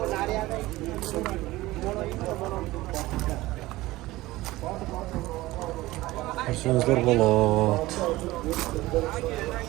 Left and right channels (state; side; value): quieter; left; 18.4 dB